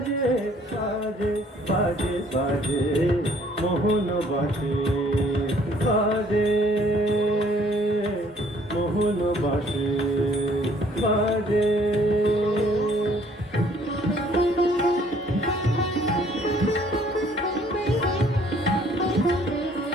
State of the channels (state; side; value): normal; both; correlation 0.60